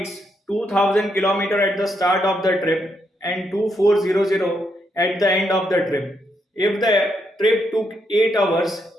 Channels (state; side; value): normal; both; correlation 0.79